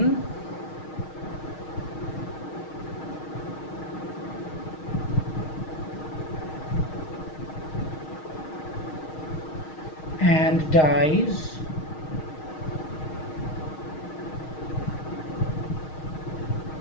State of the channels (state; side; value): late; right; 6.4 ms